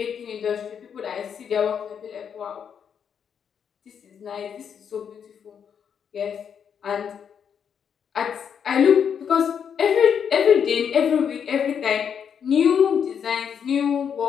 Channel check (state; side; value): quieter; right; 7.6 dB